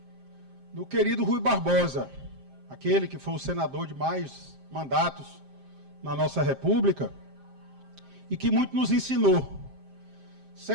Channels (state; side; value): late; left; 7.6 ms